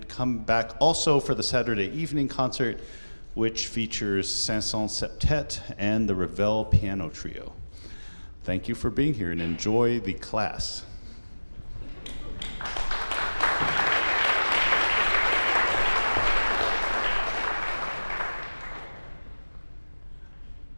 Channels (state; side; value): inverted; both; correlation -1.00